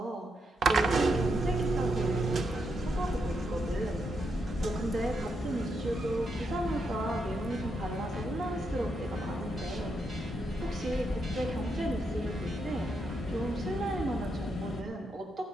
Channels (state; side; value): normal; both; correlation 0.81